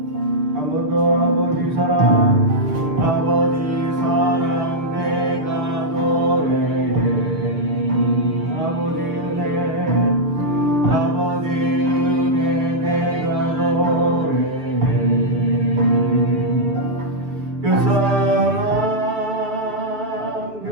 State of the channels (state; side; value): late; left; 6.8 ms